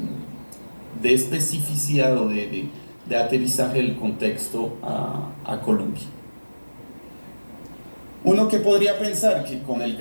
especificidad o de aterrizaje del contexto a Colombia. Uno que podría pensar que con el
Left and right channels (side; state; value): both; inverted; correlation -1.00